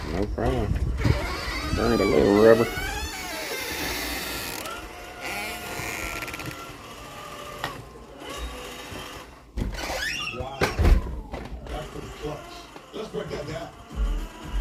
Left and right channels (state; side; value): identical; both; correlation 1.00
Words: no problem. Burned a little rubber. Wow. That's pretty clutch. Let's break that down.